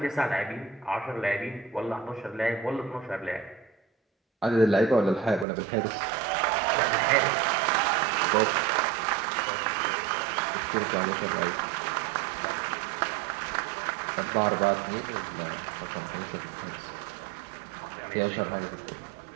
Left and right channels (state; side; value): drops out; left; at 5.5 s